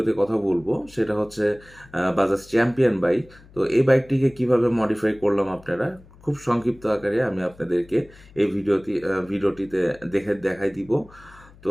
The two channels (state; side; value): noise; left; hum, 24 dB below the sound